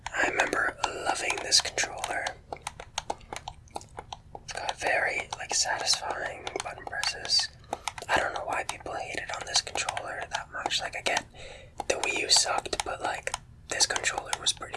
I remember loving this controller. It's got very, satisfying button presses. I don't know why people hated on this controller that much. I get the Wii U sucked, but, this controller was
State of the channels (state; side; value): identical; both; correlation 1.00